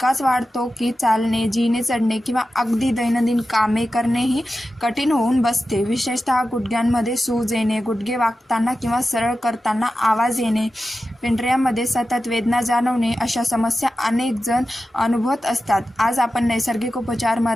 वाढतो की चालणे, जिने चढणे किंवा अगदी दैनंदिन कामे करणेही कठीण होऊन बसते। विशेषतः गुडघ्यांमध्ये सूज येणे, गुडघे वाकताना किंवा सरळ करताना आवाज येणे, पेंढऱ्यामध्ये सतत वेदना जाणवणे, अशा समस्या अनेक जण अनुभवत असतात। आज आपण नैसर्गिक उपचार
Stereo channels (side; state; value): both; normal; correlation 0.93